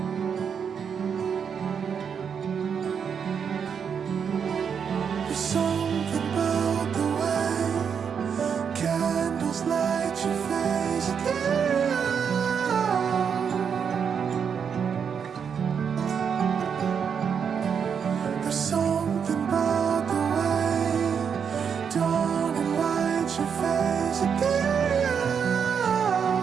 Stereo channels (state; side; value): quieter; left; 7.0 dB